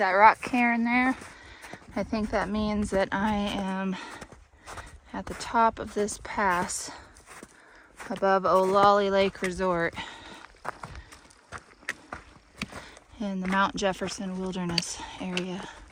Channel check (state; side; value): identical; both; correlation 1.00